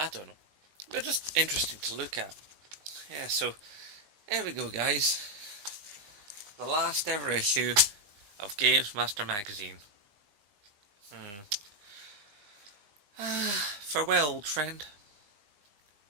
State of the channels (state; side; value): late; left; 19 ms